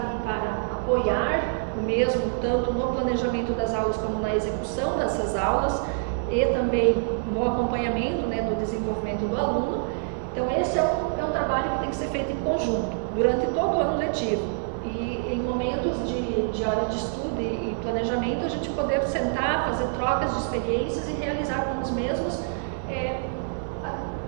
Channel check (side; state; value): left; silent; 61 dB below the other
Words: para apoiar o mesmo, tanto no planejamento das aulas como na execução dessas aulas e também no acompanhamento, né, do desenvolvimento do aluno. Então esse é um trabalho que tem que ser feito em conjunto, durante todo o ano letivo. E em momentos de hora de estudo e planejamento, a gente poder sentar, fazer trocas de experiências e realizar com os mesmos